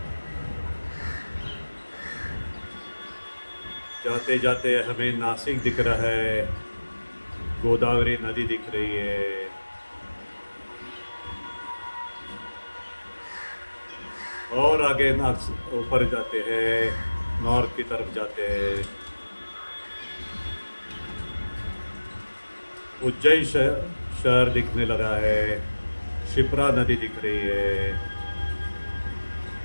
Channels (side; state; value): both; inverted; correlation -1.00